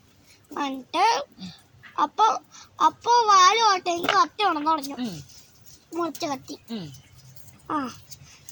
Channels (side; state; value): both; identical; correlation 1.00